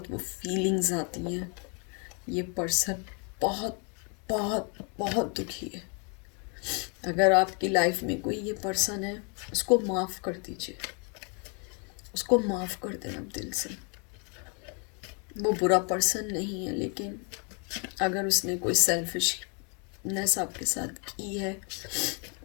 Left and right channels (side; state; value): right; quieter; 36.4 dB